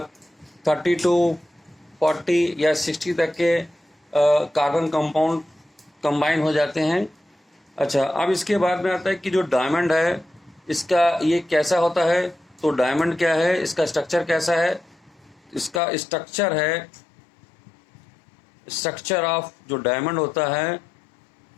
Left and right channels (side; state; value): right; drops out; at 15.8 s